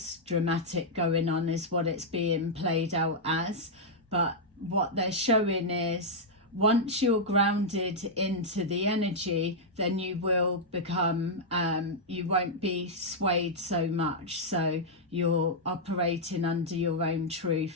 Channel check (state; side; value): normal; both; correlation -0.06